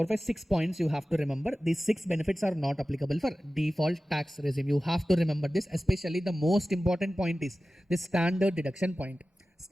5, 6 points you have to remember. These 6 benefits are not applicable for default tax regime. You have to remember this. Especially the most important point is the standard deduction point.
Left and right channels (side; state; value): both; normal; correlation 0.96